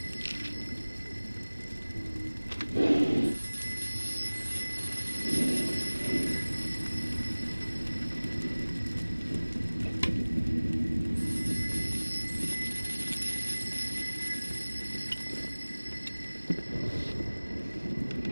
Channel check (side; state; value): both; inverted; correlation -1.00